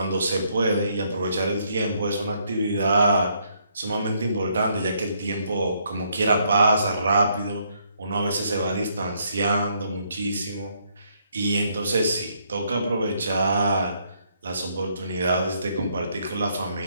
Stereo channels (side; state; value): both; inverted; correlation -0.72